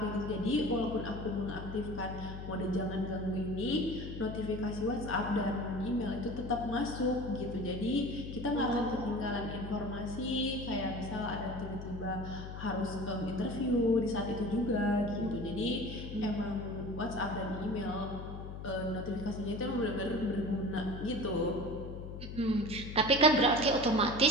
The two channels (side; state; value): left; noise; hum, 8 dB below the sound